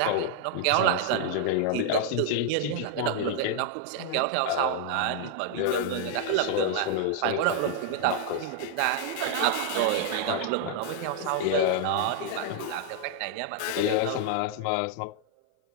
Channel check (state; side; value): different; both; correlation -0.01